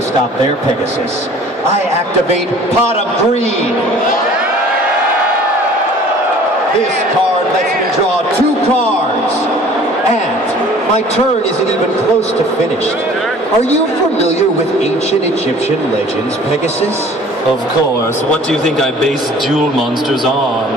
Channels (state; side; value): normal; both; correlation 0.49